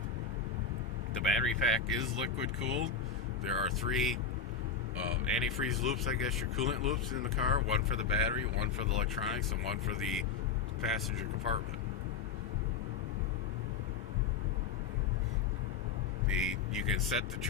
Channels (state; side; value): quieter; right; 5.5 dB